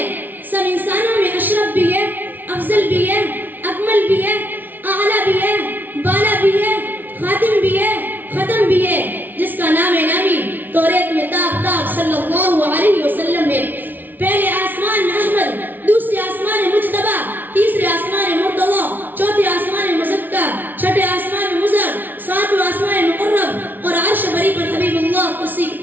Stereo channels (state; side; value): late; left; 0.086 ms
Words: سب انسانوں میں اشرف بھی ہے، افضل بھی ہے، اکمل بھی ہے، اعلیٰ بھی ہے، بالا بھی ہے، خاتم بھی ہے، ختم بھی ہے، جس کا نام نامی توریت میں تاب صلی اللہ علیہ وسلم ہے. پہلے آسمان میں احمد، دوسرے آسمان مجتبی، تیسرے آسمان مرتضی، چوتھے آسمان مزکا، چھٹے آسمان مزر، ساتویں آسمان مقرب، اور عرش بری پر حبیب اللہ، کرسی